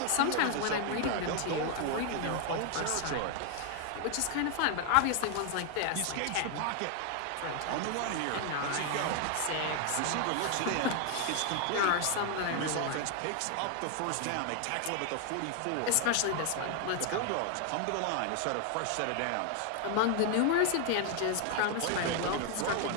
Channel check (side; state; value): both; different; correlation 0.00